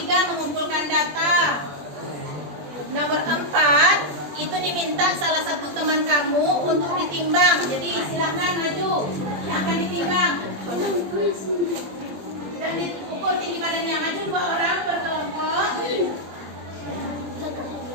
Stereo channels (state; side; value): late; left; 20 ms